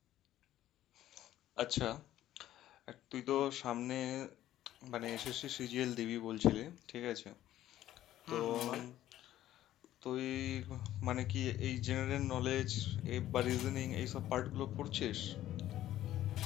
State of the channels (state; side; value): quieter; right; 13.2 dB